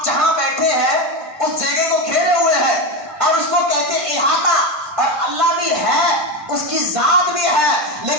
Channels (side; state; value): left; late; 1.5 ms